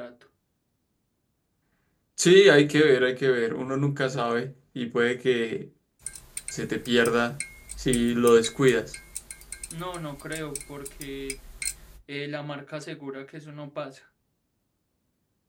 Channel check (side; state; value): both; identical; correlation 1.00